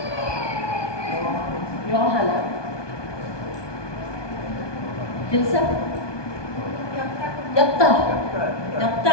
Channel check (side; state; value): right; late; 1.2 ms